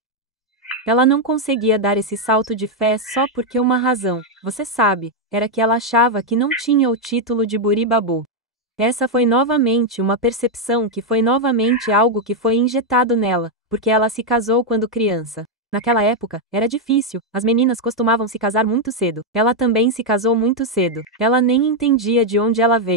Ela não conseguia dar esse salto de fé só porque uma razão, você sabe, era que ela achava que não tinha o título de Buribabu. Essa foi novamente uma percepção que foi novamente algo que foi injetado nela, porque ela se casou quando criança. Naquela época, era difícil, as meninas costumavam se casar muito cedo. Ela também se casou muito cedo. Ela nem entendia de onde ela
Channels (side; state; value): both; normal; correlation 0.01